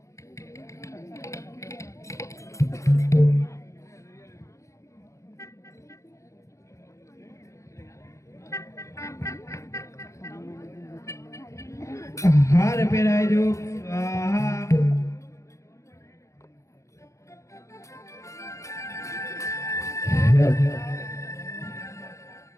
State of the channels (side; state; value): right; late; 0.15 ms